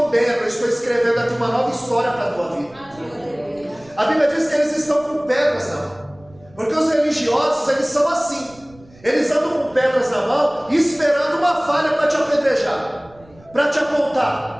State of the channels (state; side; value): noise; right; rumble, 26 dB below the sound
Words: eu estou escrevendo aqui uma nova história para a tua vida. A Bíblia diz que eles estão com pedras na mão, porque os religiosos, eles são assim. Eles andam com pedras na mão, esperando uma falha para te apedrejar, para te